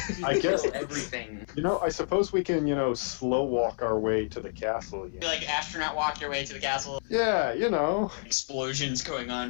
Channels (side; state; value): right; silent; 59 dB below the other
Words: I guess, Everything. I suppose we can, slow walk our way to the castle. You like astronaut walk your way to the castle. Yeah, Explosions going